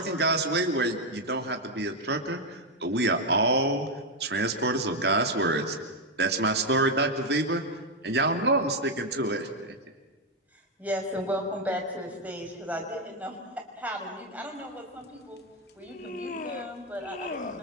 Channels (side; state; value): both; normal; correlation 0.03